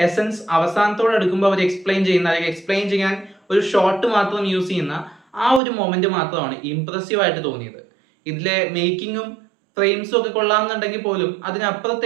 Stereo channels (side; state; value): left; drops out; at 5.6 s